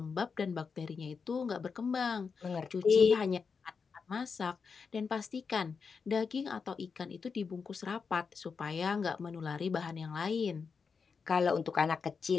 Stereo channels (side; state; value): right; quieter; 5.5 dB